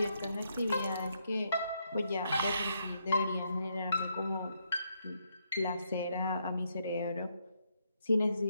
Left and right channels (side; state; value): both; inverted; correlation -0.77